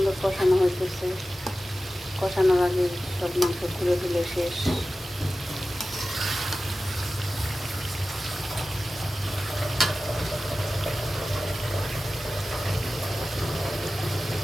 কষানো হইতেছে। কষানোর আগে সব মাংস খুলে ফেলে শেষ।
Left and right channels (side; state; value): both; normal; correlation 0.95